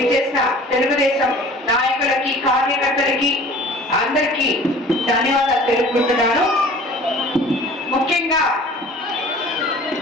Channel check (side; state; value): both; normal; correlation 0.46